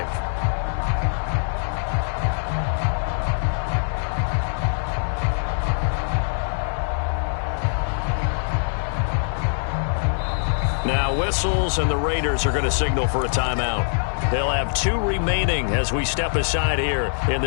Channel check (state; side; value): silent; right; digital silence